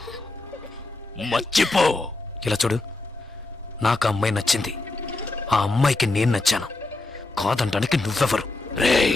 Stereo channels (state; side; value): quieter; right; 3.1 dB